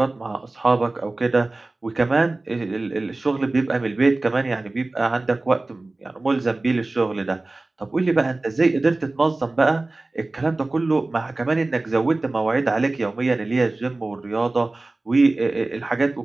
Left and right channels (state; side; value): quieter; left; 3.0 dB